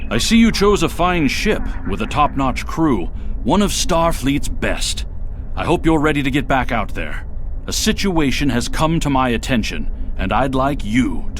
I see you chose a fine ship with a top-notch crew, one of Starfleet's best. I hope you're ready to get back out there. A situation has come to my attention, and I'd like you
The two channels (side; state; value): both; identical; correlation 1.00